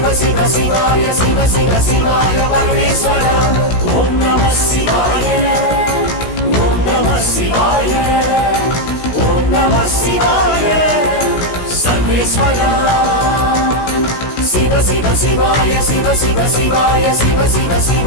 शिव शिवाय शिव शिव शिवाय परमेश्वर ओम नमः शिवाय ओम नमः शिवाय ओम नमः शिवाय सर्वेश्वर शिव शिव शिवाय शिव शिव शिवाय शिव शिव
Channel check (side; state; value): right; late; 16 ms